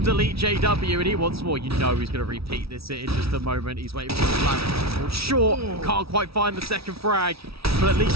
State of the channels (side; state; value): left; late; 0.76 ms